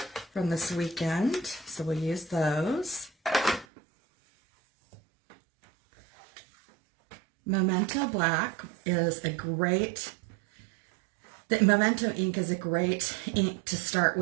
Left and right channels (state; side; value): drops out; left; at 3.7 s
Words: from this weekend, so we'll use those. Memento black is a great, the Memento ink is a great ink to start